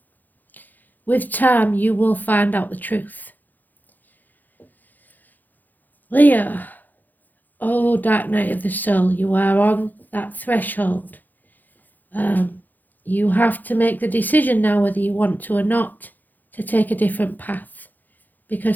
With time, you will find out the truth. Leo, oh dark night of the soul, you are on that threshold. You have to make the decision now whether you want to or not to take a different path,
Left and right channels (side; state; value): right; late; 0.085 ms